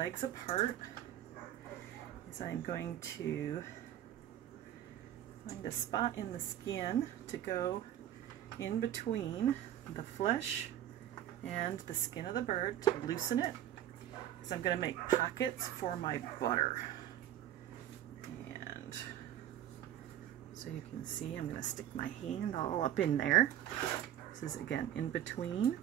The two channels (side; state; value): left; quieter; 11.5 dB